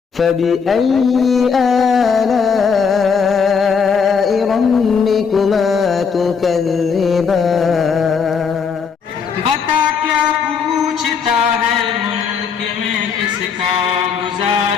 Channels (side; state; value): right; quieter; 6.0 dB